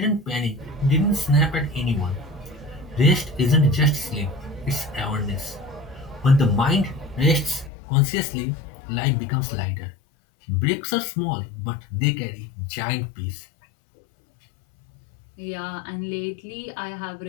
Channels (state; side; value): drops out; right; at 7.7 s